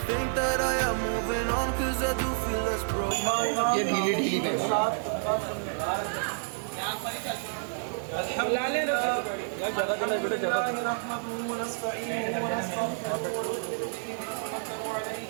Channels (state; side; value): silent; left; digital silence